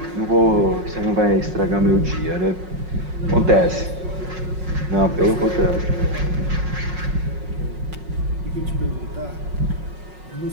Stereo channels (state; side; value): late; left; 5.5 ms